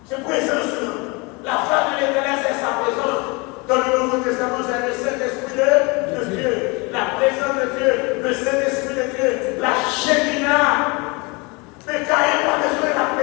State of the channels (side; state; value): right; quieter; 28.0 dB